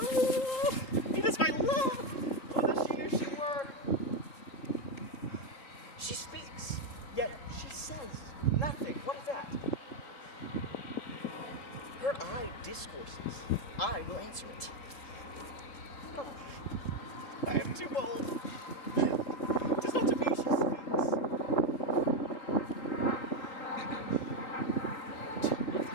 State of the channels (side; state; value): right; late; 3.7 ms